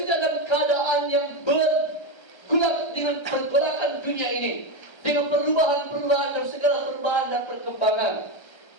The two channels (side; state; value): right; late; 1.3 ms